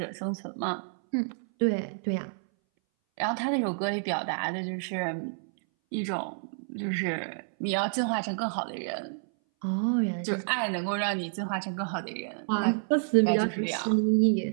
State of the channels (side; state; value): left; silent; 58 dB below the other